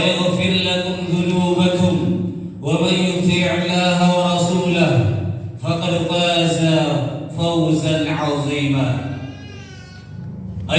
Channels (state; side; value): identical; both; correlation 1.00